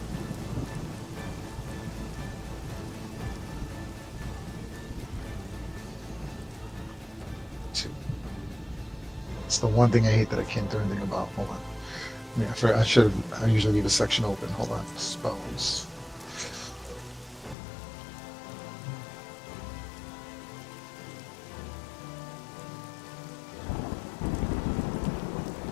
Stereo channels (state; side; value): drops out; right; at 17.6 s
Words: It's the one thing I hate that I can't do anything about. Hold on. I usually leave a section open. Hold on. Spells.